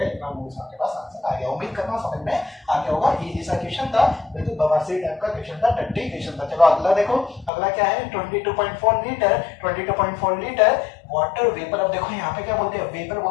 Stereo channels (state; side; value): drops out; right; at 7.5 s